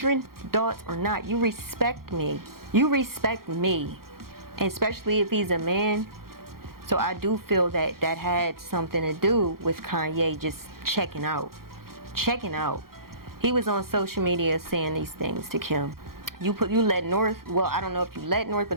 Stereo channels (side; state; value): left; late; 0.93 ms